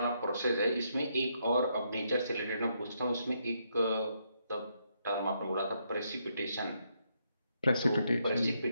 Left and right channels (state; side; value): inverted; both; correlation -0.77